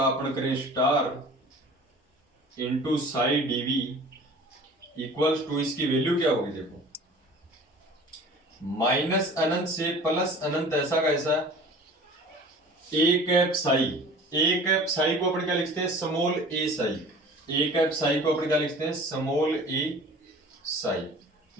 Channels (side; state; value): both; normal; correlation 0.43